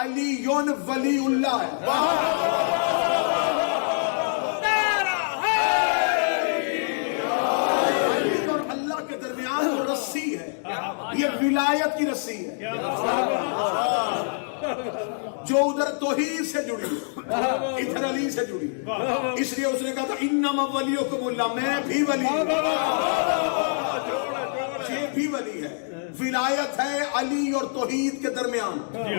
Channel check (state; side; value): silent; right; digital silence